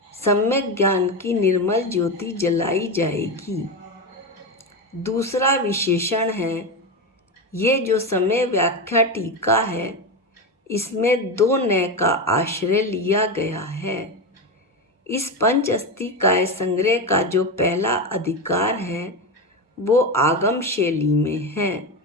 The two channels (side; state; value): both; normal; correlation 0.16